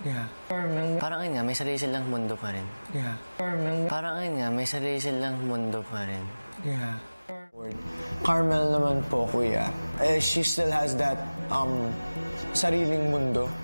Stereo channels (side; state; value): both; inverted; correlation -0.99